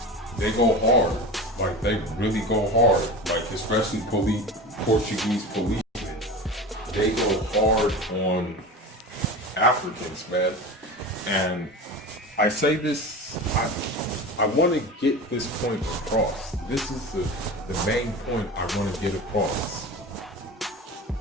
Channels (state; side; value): normal; both; correlation 0.30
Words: they go hard. Like, they really go hard. Like, especially Portuguese policemen. They go hard on Africans, man. And I say this, I want to get this point across. This is the main point I want to get across.